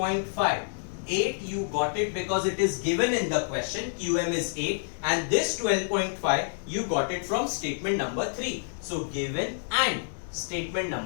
8 you got it because it is given in the question. QM is 8 and this 12.5 you got it from statement number 3. So given and statement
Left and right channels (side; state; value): right; silent; digital silence